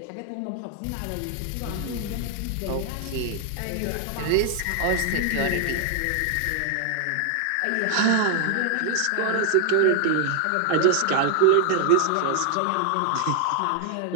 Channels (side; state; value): both; different; correlation 0.00